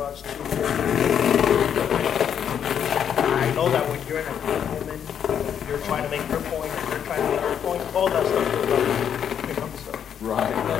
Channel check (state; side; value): quieter; right; 8.6 dB